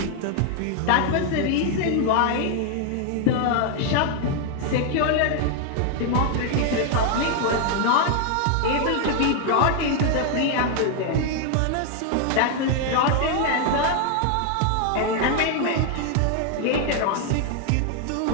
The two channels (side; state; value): both; different; correlation 0.00